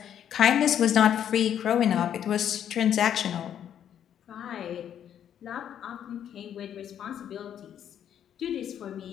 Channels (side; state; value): right; quieter; 9.6 dB